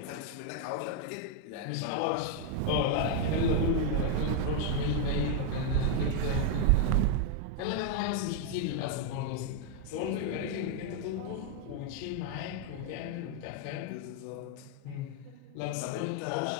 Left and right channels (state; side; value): different; both; correlation 0.00